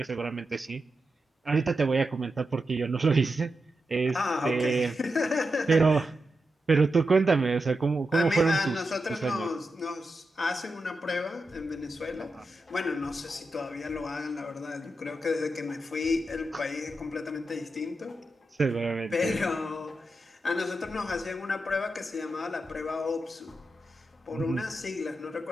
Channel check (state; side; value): normal; both; correlation 0.88